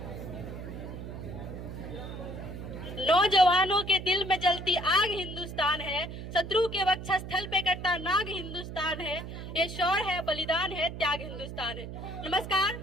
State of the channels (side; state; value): right; noise; hum, 9 dB below the sound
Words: नौजवानों के दिल में जलती आग हिंदुस्तान है, शत्रु के वक्षस्थल पे कटता नाग हिंदुस्तान है, ये शौर्य है, बलिदान है, त्याग हिंदुस्तान है। नमस्कार,